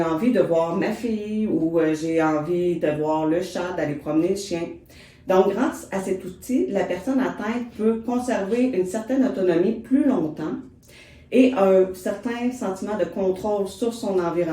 envie de voir ma fille ou j'ai envie de voir le chat, d'aller promener le chien. Donc, grâce à cet outil, la personne atteinte peut conserver une certaine autonomie plus longtemps et un certain sentiment de contrôle sur son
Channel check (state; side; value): identical; both; correlation 1.00